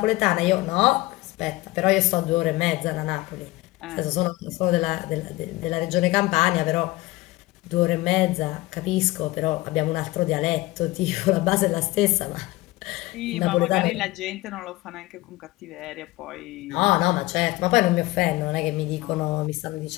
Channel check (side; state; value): right; quieter; 20.0 dB